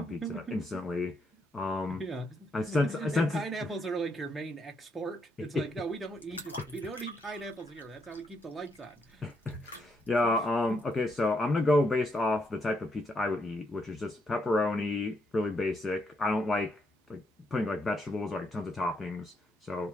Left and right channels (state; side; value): normal; both; correlation 0.77